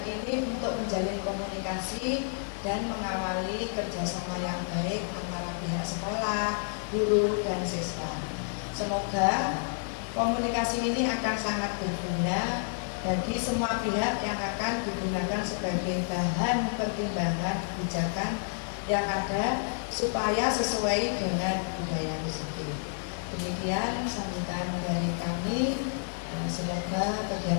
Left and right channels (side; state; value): right; silent; 58 dB below the other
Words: ini untuk menjalin komunikasi dan mengawali kerjasama yang baik antara pihak sekolah, guru, dan siswa. Semoga komunikasi ini akan sangat berguna bagi semua pihak yang akan digunakan sebagai bahan pertimbangan kebijakan yang ada supaya sesuai dengan budaya positif. Demikian sambutan dari kami. Semoga